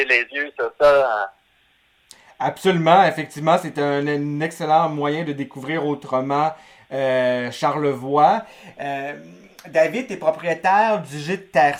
les yeux sur ça. Absolument, effectivement, c'est un excellent moyen de découvrir autrement Charlevoix. David, tu es propriétaire du gîte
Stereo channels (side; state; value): both; identical; correlation 1.00